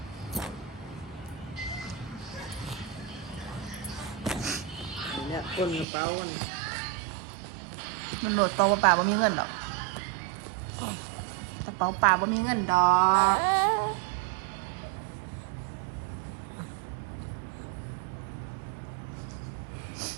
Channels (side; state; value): left; drops out; at 5.9 s